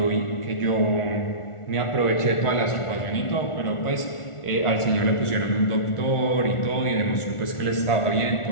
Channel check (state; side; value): late; right; 1.4 ms